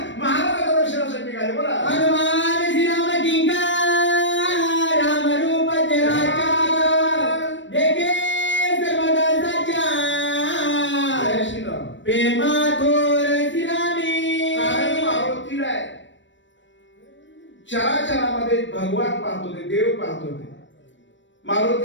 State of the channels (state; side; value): late; right; 0.54 ms